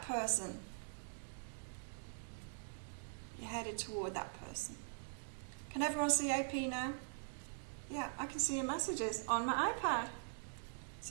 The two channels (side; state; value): left; silent; digital silence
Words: person. You're headed toward that person. Can everyone see AP now? Yeah, I can see your messages on my iPad.